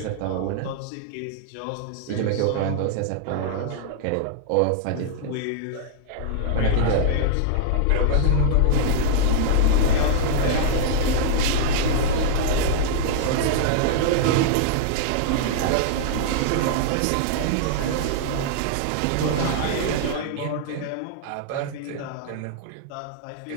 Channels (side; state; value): both; different; correlation -0.01